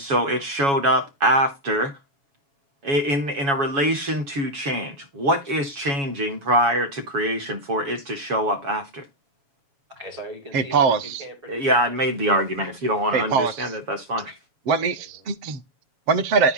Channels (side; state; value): left; late; 7.2 ms